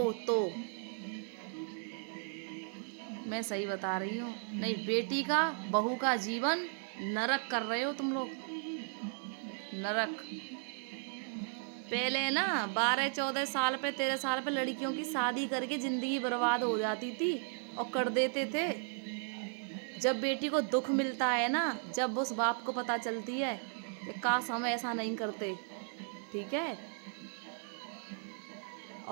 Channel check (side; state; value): left; silent; 54 dB below the other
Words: तो मैं सही बता रही हूँ। नहीं, बेटी का बहू का जीवन नरक कर रहे हो तुम लोग, नरक। पहले ना 12-14 साल पे 13 साल पे लड़कियों की शादी करके जिंदगी बर्बाद हो जाती थी और कर देते थे। जब बेटी को दुख मिलता है ना, जब उस बाप को पता चलती है कि काश हम ऐसा नहीं करते, ठीक है।